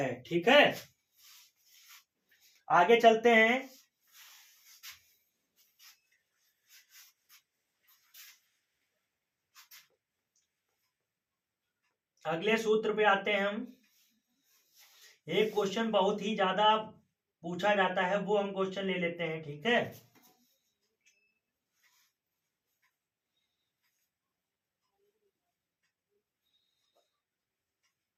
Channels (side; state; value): both; identical; correlation 1.00